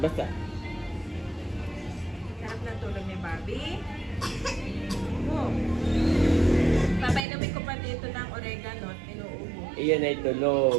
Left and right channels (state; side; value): drops out; left; at 7.2 s